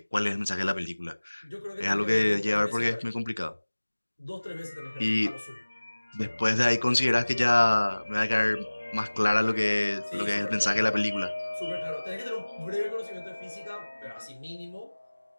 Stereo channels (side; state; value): both; inverted; correlation -1.00